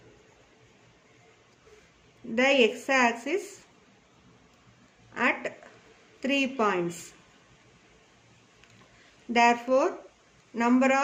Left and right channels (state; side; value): identical; both; correlation 1.00